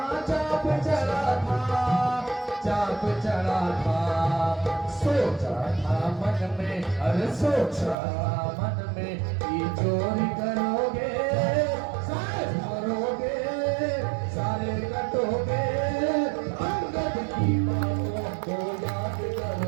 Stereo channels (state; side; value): drops out; left; at 8.0 s